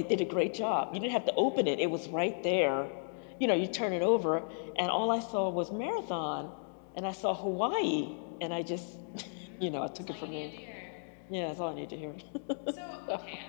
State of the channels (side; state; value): right; silent; digital silence